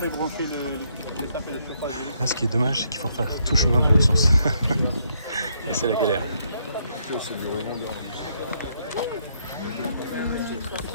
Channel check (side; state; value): both; inverted; correlation -0.73